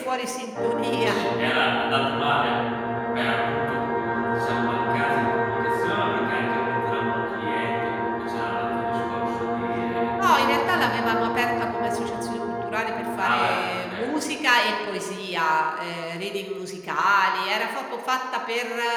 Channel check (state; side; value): identical; both; correlation 1.00